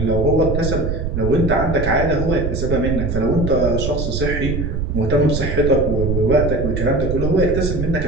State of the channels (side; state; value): right; noise; rumble, 2 dB below the sound